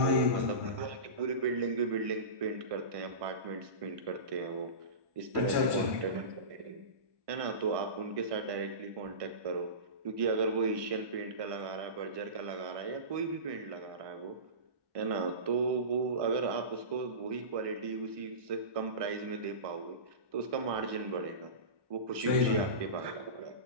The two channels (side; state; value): left; late; 1.2 ms